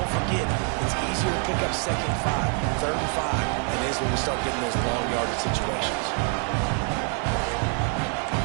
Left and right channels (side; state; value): left; quieter; 39.6 dB